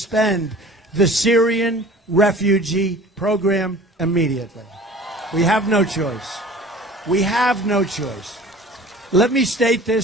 the Syrian refugee program immediately. We have no choice. We have no choice. Let me state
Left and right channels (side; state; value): both; normal; correlation 0.45